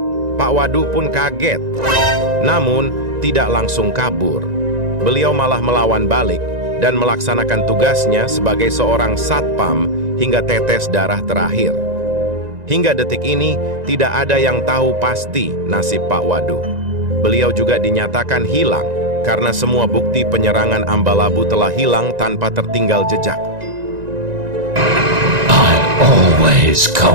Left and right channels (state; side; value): late; left; 1.9 ms